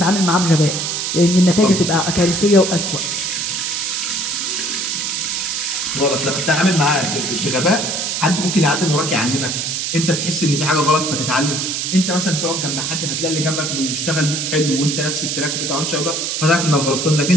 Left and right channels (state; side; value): noise; right; hiss, 1 dB below the sound